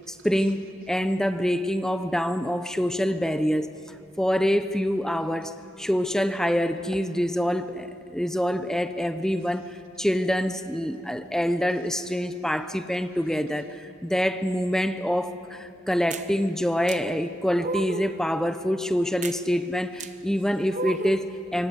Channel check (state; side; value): normal; both; correlation 0.91